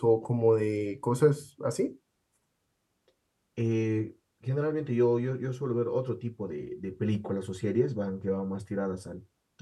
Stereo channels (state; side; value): identical; both; correlation 1.00